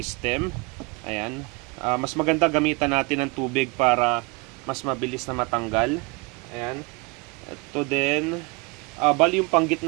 Ayan. Mas maganda gamitan natin ng tubig para mas mabilis na matanggal. Ayan. Ito din, bali yung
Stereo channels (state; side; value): quieter; left; 27.7 dB